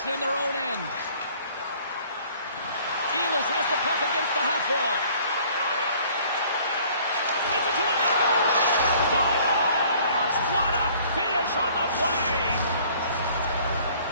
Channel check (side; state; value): both; inverted; correlation -0.55